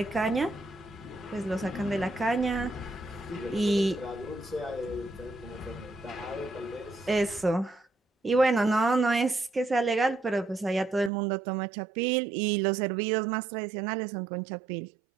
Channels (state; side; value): drops out; left; at 11.1 s